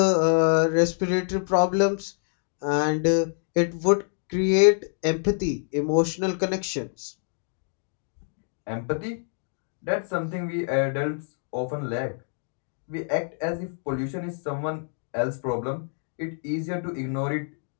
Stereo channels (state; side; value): silent; right; 61 dB below the other